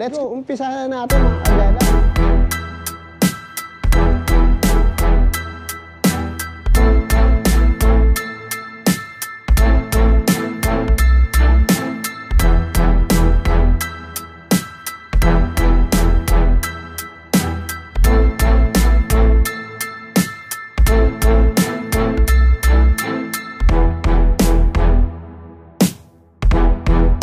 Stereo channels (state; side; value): identical; both; correlation 1.00